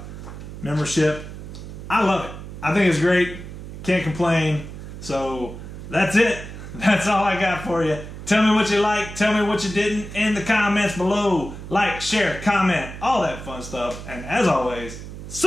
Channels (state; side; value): noise; right; hum, 11 dB below the sound